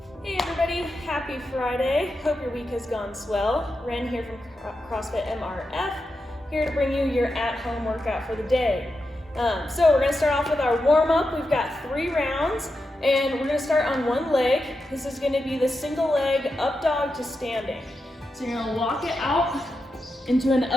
everybody, happy Friday. Hope your week has gone swell. Ren here from CrossFit MRF, here to bring you your at-home workout for the day. So we're going to start off with our warm-up. We've got 3 rounds, and we're going to start on one leg. This is going to be the single leg up dog to standing. So you're going to walk it out into an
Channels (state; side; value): normal; both; correlation 0.88